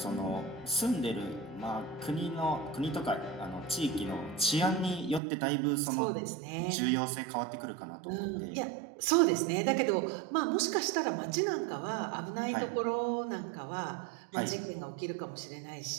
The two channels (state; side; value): drops out; left; at 5.2 s